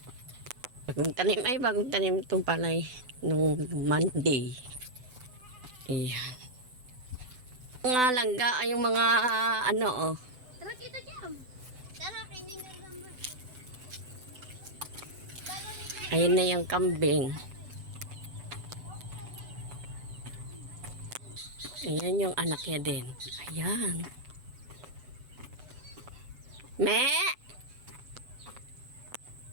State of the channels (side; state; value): left; late; 8.0 ms